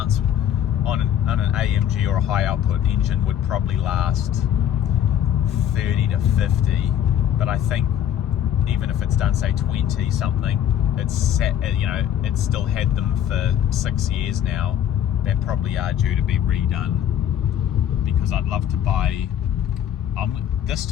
on an AMG or a high output engine would probably last 30 to 50, but I think even if it's done, say 20 something, it's still had them for 6 years now. They probably are due to be redone, because I'd love to buy, this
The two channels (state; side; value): quieter; right; 10.0 dB